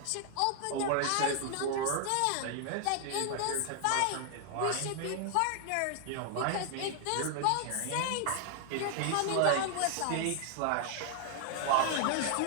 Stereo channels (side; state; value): both; different; correlation 0.00